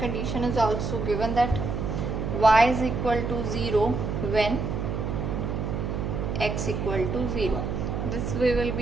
is also given, that y is equal to 0 when x equal to 0. This we will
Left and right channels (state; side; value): noise; right; hum, 2 dB below the sound